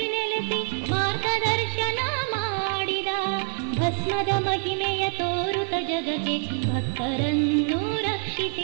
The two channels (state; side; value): silent; left; 61 dB below the other